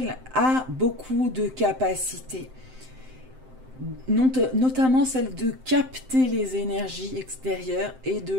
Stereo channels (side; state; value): left; late; 7.7 ms